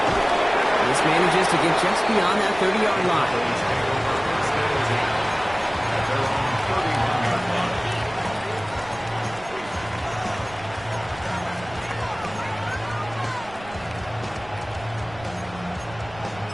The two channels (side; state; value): right; noise; rumble, 19 dB below the sound